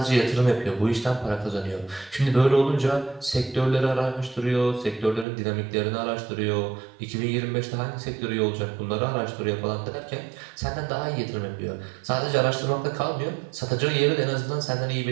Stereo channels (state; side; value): drops out; left; at 5.2 s